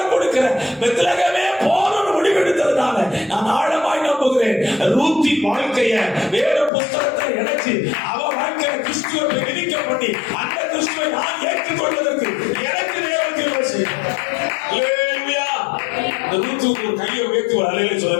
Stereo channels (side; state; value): right; drops out; at 6.7 s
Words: கொடுக்கிற பெத்லகேமே போறன்னு முடிவெடுத்ததுனால நான் ஆழமாய் நம்புகிறேன், ரூத்தின் வாழ்க்கைய வேத புஸ்தகத்தை இணைச்சு அவ வாழ்க்கையை கிறிஸ்துவை விதிக்க பண்ணி அந்த கிறிஸ்துவை நான் ஏற்றுக்கொள்வதற்கு எனக்கு தேவன் கிருபை செய்யும். அல்லேலூயா. ரூத்துக்கு கையை உயர்த்தி ஒரு அல்லேலூயா